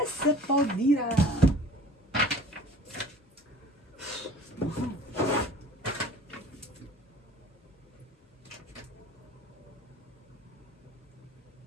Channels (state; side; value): normal; both; correlation 0.46